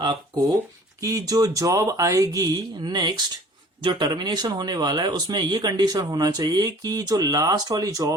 कि जो जॉब आएगी नेक्स्ट, जो टर्मिनेशन होने वाला है, उसमें ये कंडीशन होना चाहिए कि जो लास्ट वाली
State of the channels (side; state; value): both; normal; correlation 0.49